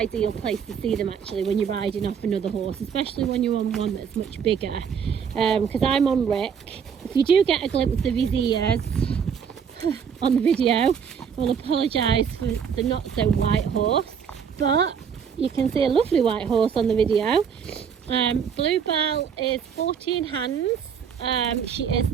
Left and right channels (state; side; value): quieter; left; 7.2 dB